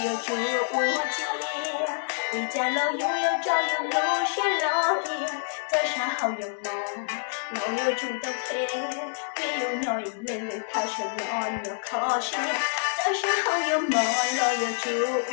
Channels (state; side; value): silent; right; digital silence